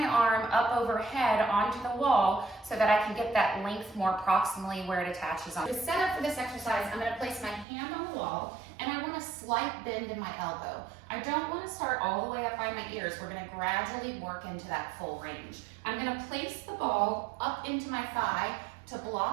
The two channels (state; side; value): drops out; left; at 7.7 s